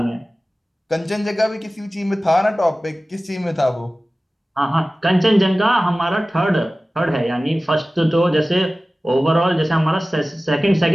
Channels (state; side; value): normal; both; correlation 0.97